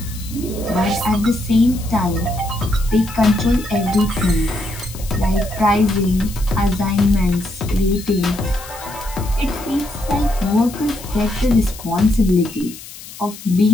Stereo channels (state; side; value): noise; left; hiss, 15 dB below the sound